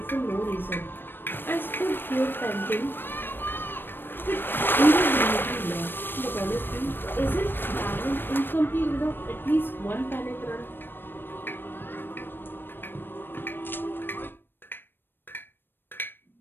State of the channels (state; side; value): late; right; 0.097 ms